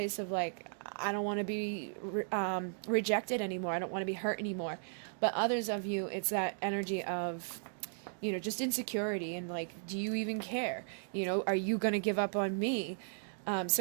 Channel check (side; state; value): left; silent; digital silence